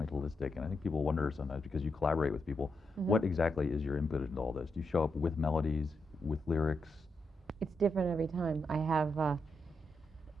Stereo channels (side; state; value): both; normal; correlation 0.83